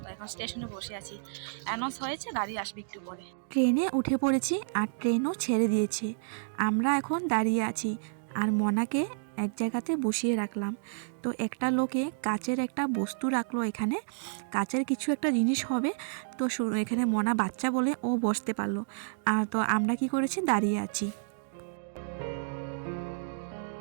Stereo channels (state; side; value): silent; left; digital silence